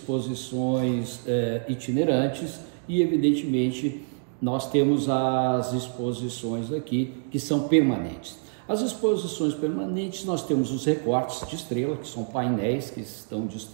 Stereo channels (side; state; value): left; silent; 61 dB below the other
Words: itinerantes e evidentemente nós temos as exposições aqui que são permanentes. As exposições permanentes, nós temos os recortes de Estrela, que são painéis que estão